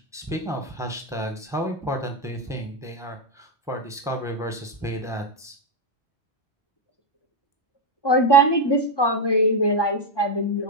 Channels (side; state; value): both; normal; correlation 0.05